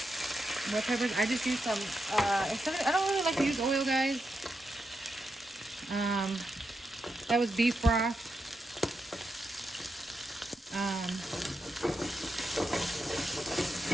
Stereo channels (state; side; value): normal; both; correlation 0.86